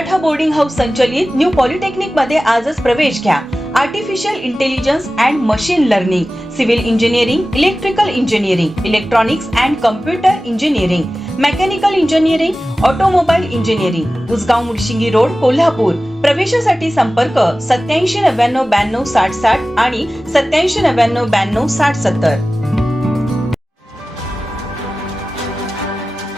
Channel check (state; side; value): normal; both; correlation 0.96